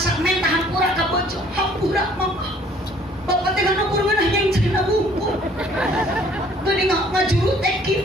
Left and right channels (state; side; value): normal; both; correlation 0.58